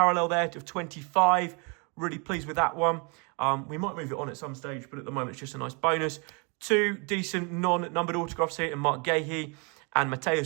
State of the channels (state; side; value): quieter; left; 32.9 dB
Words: there of 25. Really pleased with that one. We might move it on at some stage, but at the moment it's just a nice bonus. 2 decent non-numbered autographs here in Mark Gahey and